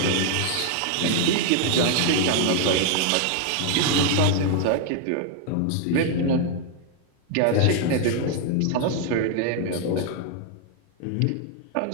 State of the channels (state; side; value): different; both; correlation 0.00